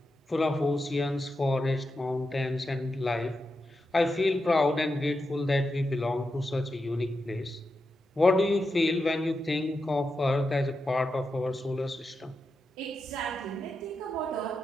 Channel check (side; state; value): both; normal; correlation 0.88